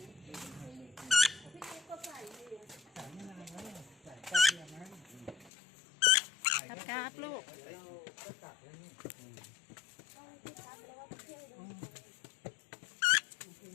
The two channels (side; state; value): right; drops out; at 5.5 s